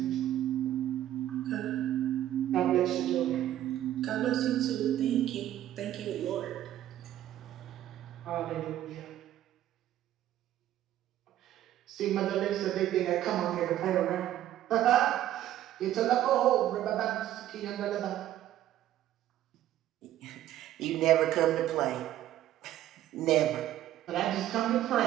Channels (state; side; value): quieter; left; 12.8 dB